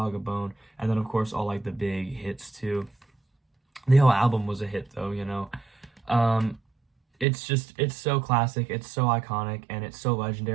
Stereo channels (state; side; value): drops out; left; at 7.2 s